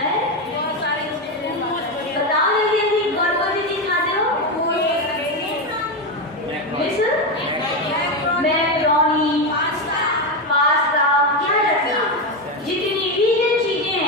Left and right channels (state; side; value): normal; both; correlation 0.12